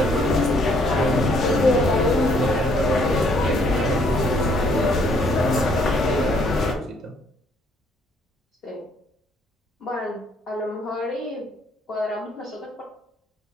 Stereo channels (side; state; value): both; normal; correlation 0.66